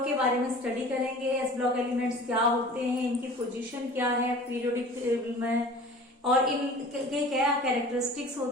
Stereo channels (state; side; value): normal; both; correlation 0.42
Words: के बारे में study करेंगे। S block elements क्या होते हैं, इनकी पोजीशन क्या है पीरियोडिक टेबल में, और इनके क्या कैरेक्टरिस्टिक्स